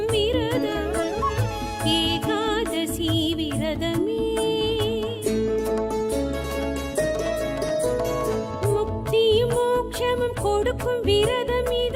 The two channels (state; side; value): identical; both; correlation 1.00